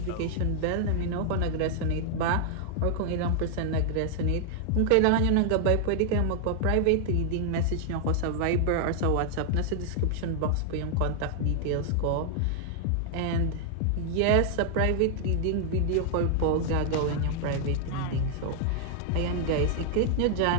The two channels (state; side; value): different; both; correlation 0.00